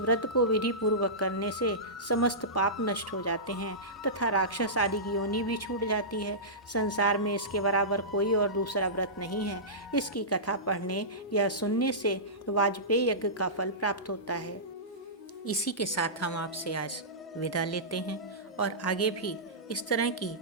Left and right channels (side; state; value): both; normal; correlation -0.18